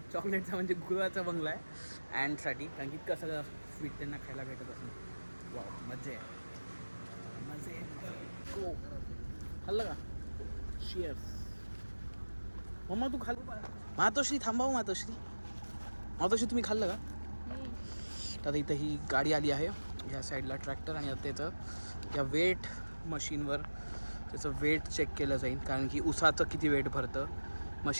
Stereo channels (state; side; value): inverted; both; correlation -1.00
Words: चॉकलेटचा म्हणजे गुळाचा बंगला आहे अँडसाठी. कारण की इतकं सगळं स्वीट त्यांना खायला भेटत असेल. वा मजा आहे. हो खाल्लं का? शिअर्स. मम्मा तू खाल्लं? मातोश्री थांबावं. मातोश्री तुम्ही खाल्लं का? आता इथं ही गाडी आली आहे ह्या साईडला ट्रॅक्टर. आणि आता त्याचं या वेट मशीनवर त्याचं वेट चेक केलं जाईल कारण की उसाचं किती वेट भरतं.